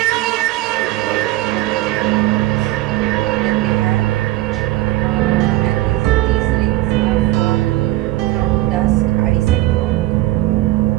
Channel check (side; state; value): left; quieter; 17.1 dB